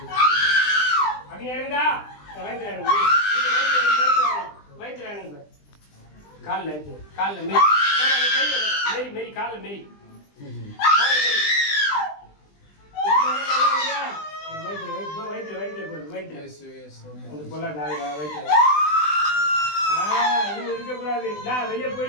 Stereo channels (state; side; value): late; right; 20 ms